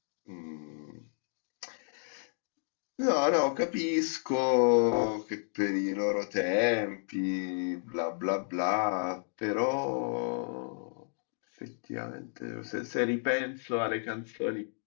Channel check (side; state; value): right; silent; digital silence